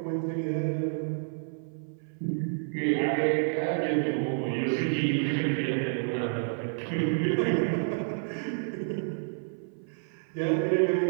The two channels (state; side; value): silent; left; 58 dB below the other